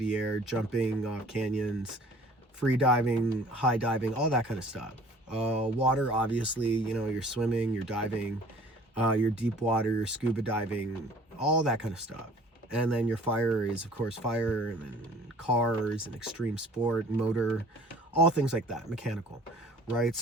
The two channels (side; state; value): both; normal; correlation 0.50